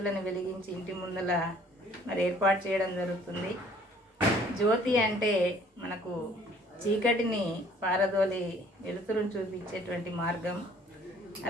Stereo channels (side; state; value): both; normal; correlation 0.57